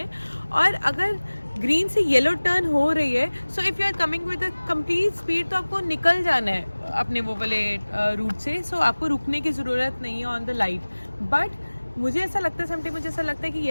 और अगर ग्रीन से येलो टर्न हो रही है so if you are coming with a complete speed तो आपको निकल जाना है अपने वो वाले रूट से. सो आपको रुकने की ज़रूरत नहीं है ऑन द लाइट. बट मुझे ऐसा लगता है समटाइम मुझे ऐसा लगता है कि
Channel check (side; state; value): both; inverted; correlation -1.00